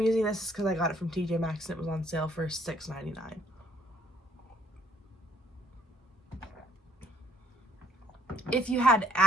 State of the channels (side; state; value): both; normal; correlation 0.63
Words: using this is because I got it from TJ Maxx and it was on sale for $6.99. If you had